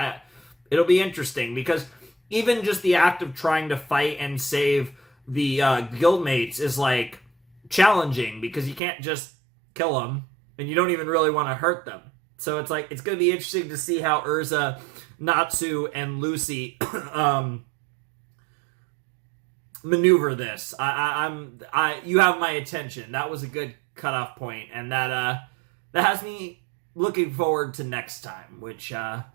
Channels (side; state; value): left; drops out; at 8.8 s